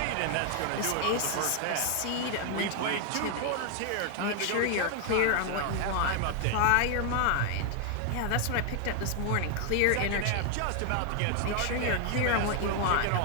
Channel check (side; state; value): both; different; correlation 0.00